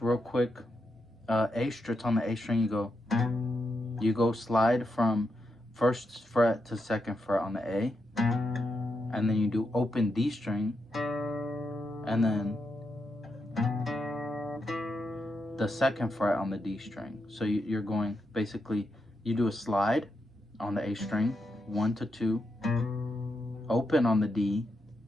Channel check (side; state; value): both; normal; correlation 0.84